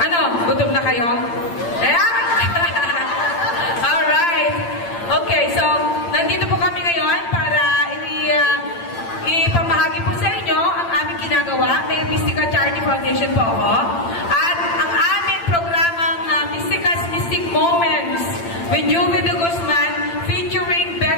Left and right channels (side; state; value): right; late; 8.8 ms